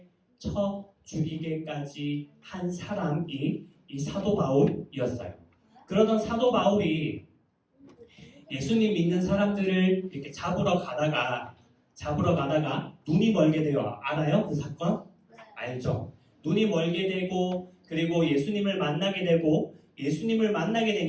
죽이게까지 한 사람이 이 사도 바울이었어요. 그러던 사도 바울이 예수님 믿는 사람들을 이렇게 잡으러 가다가 눈이 멀게 돼요. 알아요? 그 사건? 알죠? 눈이 멀게 되고 그리고 예수님을 만나게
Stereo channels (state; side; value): identical; both; correlation 1.00